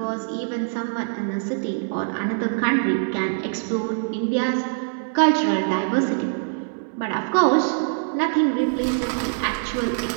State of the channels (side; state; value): left; silent; 63 dB below the other